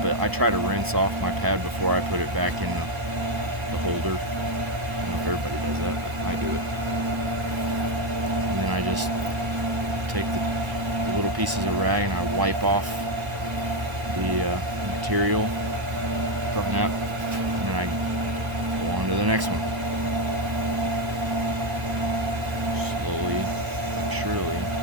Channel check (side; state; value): left; late; 1.0 ms